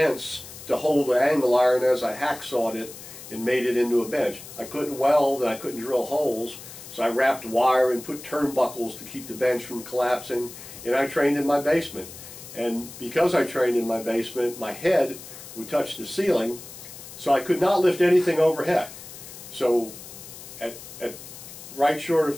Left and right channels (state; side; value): noise; left; hiss, 15 dB below the sound